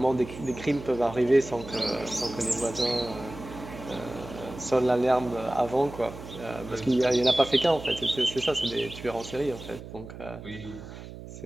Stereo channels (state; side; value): noise; right; hum, 13 dB below the sound